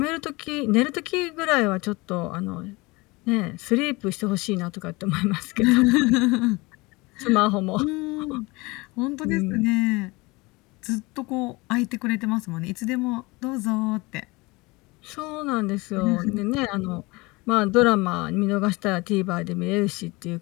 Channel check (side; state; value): right; quieter; 23.9 dB